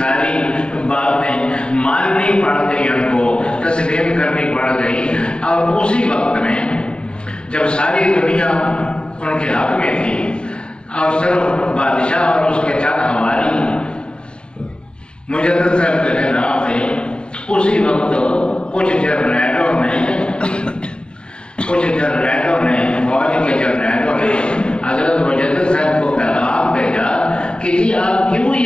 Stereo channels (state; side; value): late; right; 0.051 ms